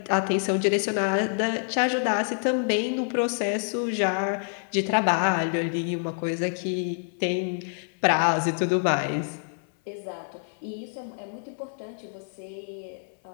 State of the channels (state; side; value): silent; right; 60 dB below the other